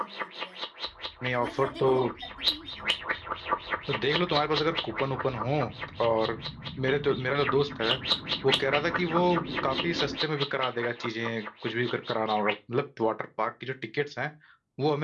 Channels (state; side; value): identical; both; correlation 1.00